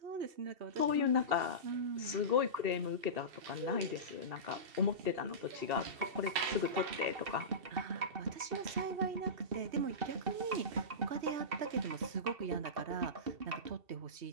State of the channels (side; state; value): left; late; 2.7 ms